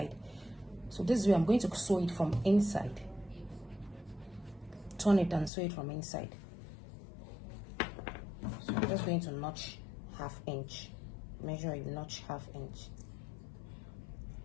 So this way I'm going to sew it from inside, turn it and sew it from inside. So I'm just going to notch 1/2 inch, measure a notch 1/2 inch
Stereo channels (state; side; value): drops out; right; at 5.5 s